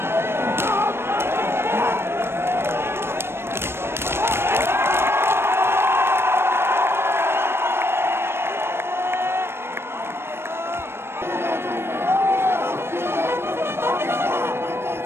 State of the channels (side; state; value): left; late; 0.12 ms